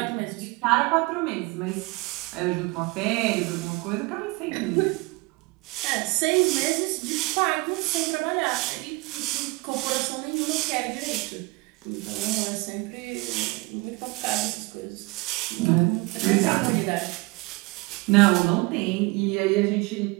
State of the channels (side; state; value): left; quieter; 25.4 dB